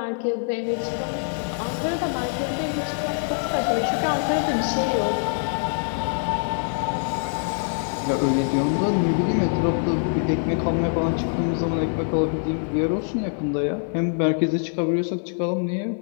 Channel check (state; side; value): silent; right; 56 dB below the other